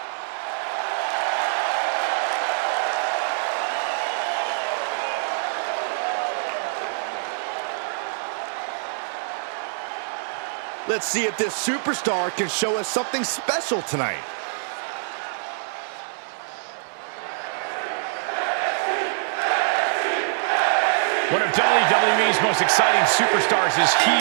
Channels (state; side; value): silent; left; digital silence